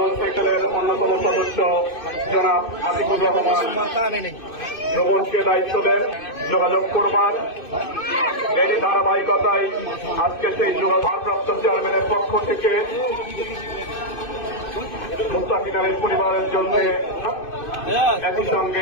সেক্টরের অন্যতম সদস্য জনাব আতিকুর রহমান ভ্রমণকে দায়িত্ব দেন যোগাযোগ করবার এরই ধারাবাহিকতায় আজকে সেই ভারপ্রাপ্ত চেয়ারম্যানের পক্ষ থেকে মুস্তাকিনের পরিবারের জন্য একই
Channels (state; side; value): late; right; 2.6 ms